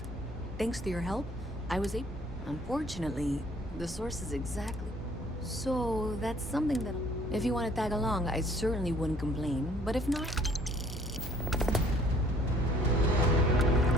Thanks to your help, I was able... Unfortunately, the source is exactly... So, that's something that... If you want to tag along, I certainly wouldn't complain. But if not...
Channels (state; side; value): normal; both; correlation 0.58